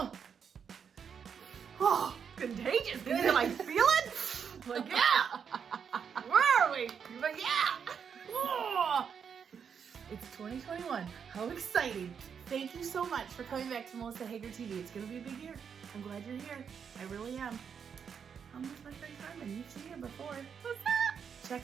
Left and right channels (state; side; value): quieter; left; 7.0 dB